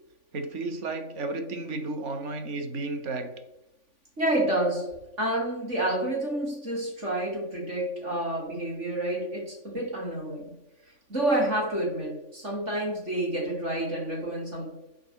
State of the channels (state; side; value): late; left; 3.5 ms